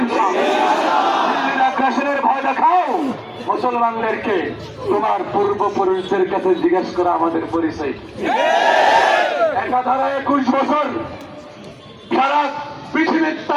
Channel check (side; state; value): both; identical; correlation 1.00